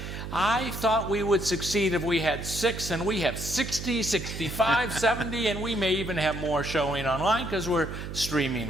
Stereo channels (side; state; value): right; noise; hum, 8 dB below the sound